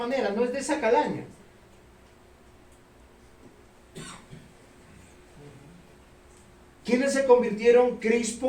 no es de esa calaña. ¿Quiénes se convirtieron?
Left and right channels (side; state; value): both; identical; correlation 1.00